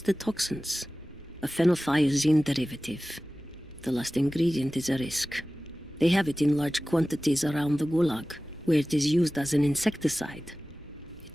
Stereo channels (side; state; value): both; normal; correlation 0.97